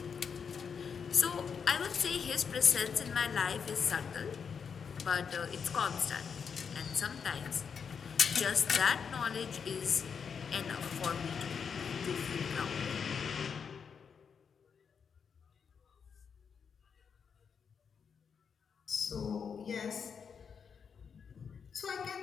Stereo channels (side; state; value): right; quieter; 6.5 dB